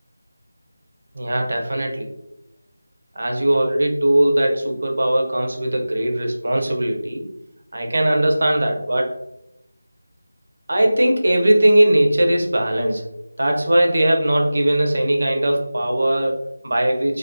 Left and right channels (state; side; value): inverted; both; correlation -0.97